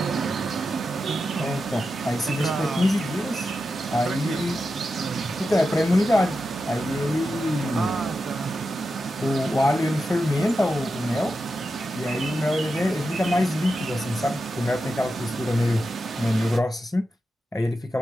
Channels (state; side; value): normal; both; correlation 0.89